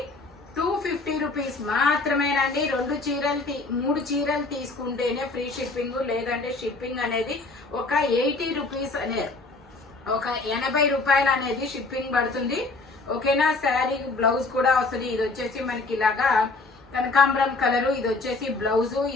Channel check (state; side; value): quieter; right; 3.5 dB